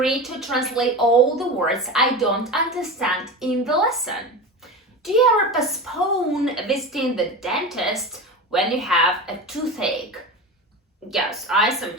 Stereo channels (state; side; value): normal; both; correlation 0.27